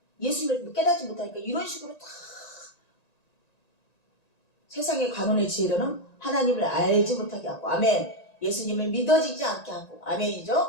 예수님을 깨닫지 못하니까 이런 식으로 다 세상의 관원의 지혜로는 하나님을 알지 못하게 하고 아멘. 예수님을 믿어지지 않게 하고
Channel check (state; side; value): late; right; 1.9 ms